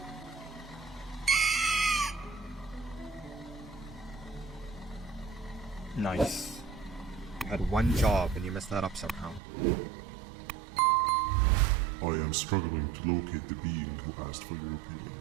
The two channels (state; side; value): drops out; left; at 9.4 s